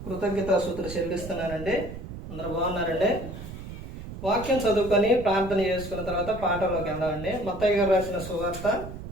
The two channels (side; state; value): right; noise; rumble, 10 dB below the sound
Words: కృతజ్ఞతాస్తుతులు చెల్లిస్తున్నానండి. అందరూ బాగున్నారండి. వాక్యం చదువుకొని ప్రార్థన చేసుకున్న తర్వాత పాఠంలోకి వెళ్దామండి. మత్తయి గారు రాసిన సువార్త